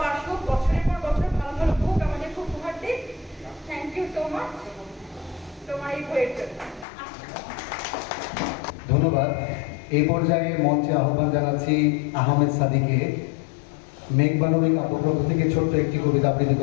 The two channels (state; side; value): drops out; right; at 6.9 s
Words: আসুক, বছরের পর বছর ভালো ভালো বুক আমাদের খুব উপহার দিক। থ্যাংক ইউ সো মাচ তোমার এই বইয়ের জন্য। ধন্যবাদ। এই পর্যায়ে মঞ্চে আহ্বান জানাচ্ছি আহমেদ সাদিকে মেঘ মানবী কাব্যগ্রন্থ থেকে ছোট্ট একটি কবিতা আবৃত্তি